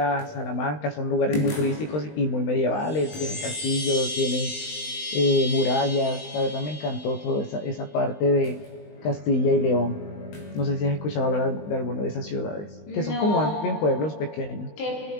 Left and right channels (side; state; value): right; late; 20 ms